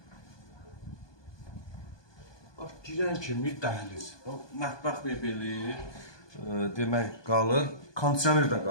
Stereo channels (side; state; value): right; late; 1.2 ms